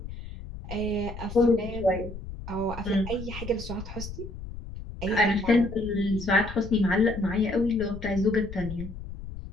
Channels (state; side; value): noise; left; rumble, 11 dB below the sound